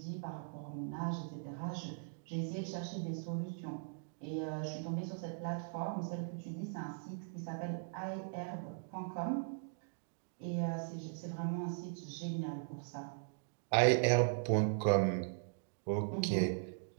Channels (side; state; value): left; silent; digital silence